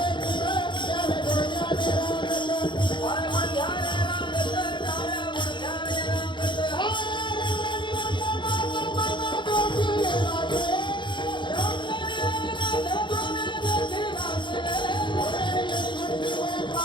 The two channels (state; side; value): late; right; 0.23 ms